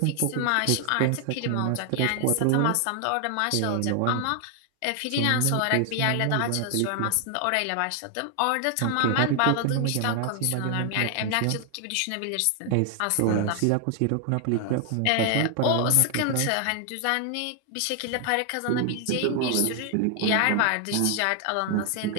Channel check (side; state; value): both; different; correlation 0.00